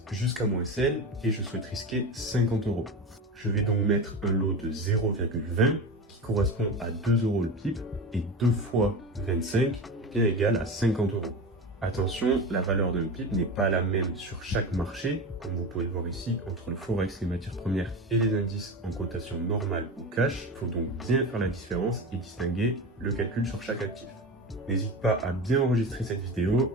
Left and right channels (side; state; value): both; normal; correlation 0.26